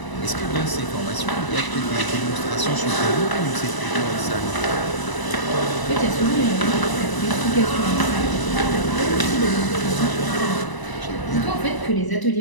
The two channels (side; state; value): right; late; 1.0 ms